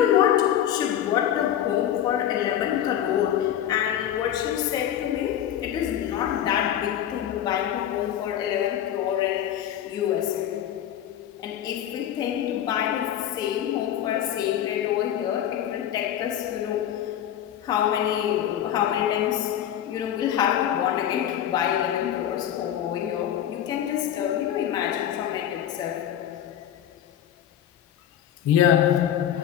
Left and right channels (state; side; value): quieter; right; 10.6 dB